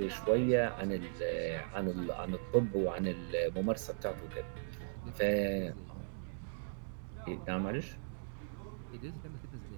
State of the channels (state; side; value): silent; left; digital silence